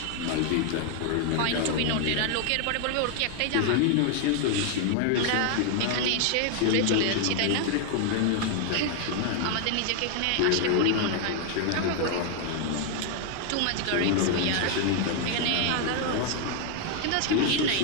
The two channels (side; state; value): both; different; correlation 0.00